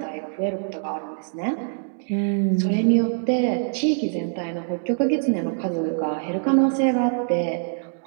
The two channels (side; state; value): left; silent; digital silence